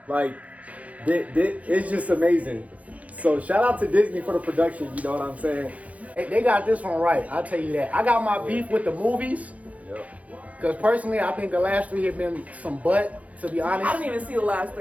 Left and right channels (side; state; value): left; late; 0.068 ms